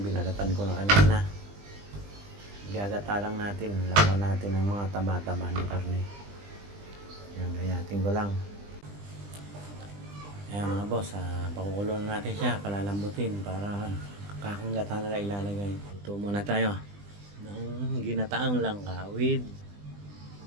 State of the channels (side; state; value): left; late; 20 ms